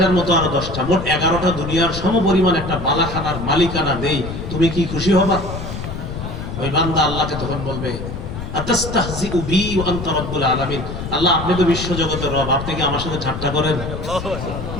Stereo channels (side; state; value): left; noise; rumble, 7 dB below the sound